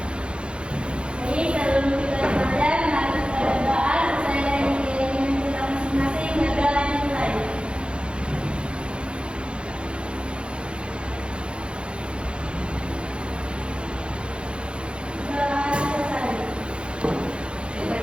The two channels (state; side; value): late; left; 0.056 ms